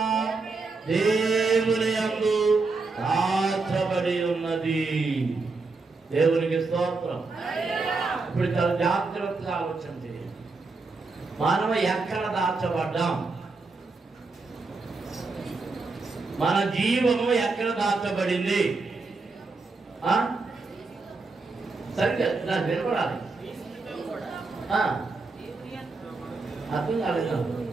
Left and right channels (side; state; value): left; quieter; 3.9 dB